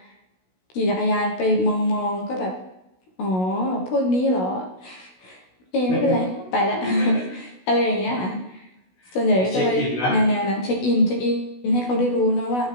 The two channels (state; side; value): late; right; 16 ms